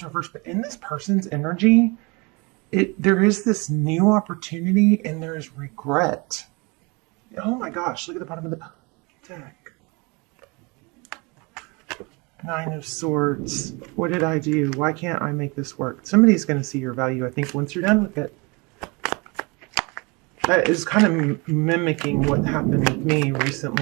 reversed, but in this person's energy, there is this new opportunity and there is regret. Oh my gosh, look at the bottom of the deck. Nine of Swords. What did I do? Why can't I make this work? Somebody's going to see your value, I think, once you're done with it. That is kind of mimicking what happened with me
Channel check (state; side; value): quieter; left; 28.2 dB